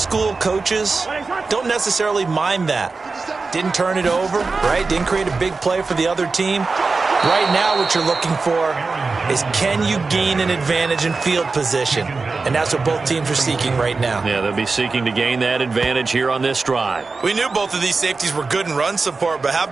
coaches don't necessarily mind that. Didn't turn it over, right? Didn't create a big play for the other team. Right now what you're looking for is, can you gain an advantage in field position? And that's what both teams are seeking right now. Yeah, they'll be seeking to gain that advantage here on this drive. We knew both of these safeties were good in run support, but how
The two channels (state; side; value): quieter; left; 4.1 dB